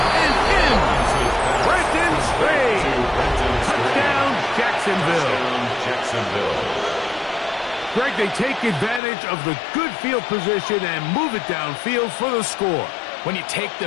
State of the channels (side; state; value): right; drops out; at 9.0 s